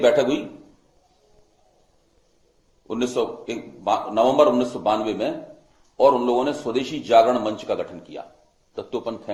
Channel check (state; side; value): identical; both; correlation 1.00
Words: बैठक हुई नवंबर 1992 में और उन लोगों ने स्वदेशी जागरण मंच का गठन किया, दत्तोपंत